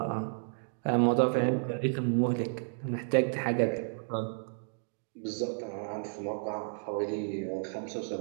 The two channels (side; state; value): left; silent; digital silence